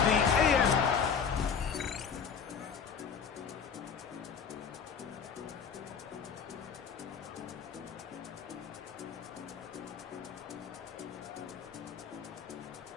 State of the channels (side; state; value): right; quieter; 6.6 dB